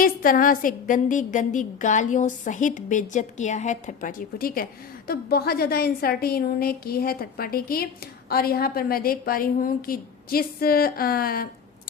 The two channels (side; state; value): right; quieter; 6.6 dB